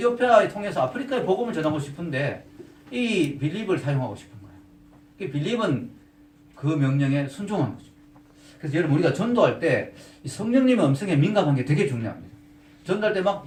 통해서 아프리카에 복음을 전하고 싶은데 이 빌립을 사용하고 싶은 거예요. 빌립은 그 명령에 순종한 거죠. 그래서 여러분 우리가 전도할 때 성령님의 음성에 민감한 게 되게 중요합니다. 전도할 때 막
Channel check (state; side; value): identical; both; correlation 1.00